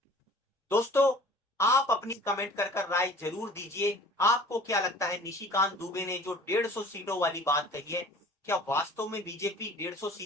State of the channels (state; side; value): normal; both; correlation 0.47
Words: दोस्तों आप अपनी कमेंट कर राय जरूर दीजिए। आपको क्या लगता है, निशिकांत दुबे ने जो 150 सीटों वाली बात कही है, क्या वास्तव में बीजेपी 150